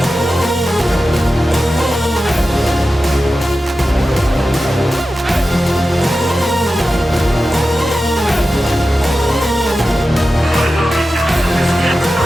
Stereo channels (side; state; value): both; normal; correlation 0.93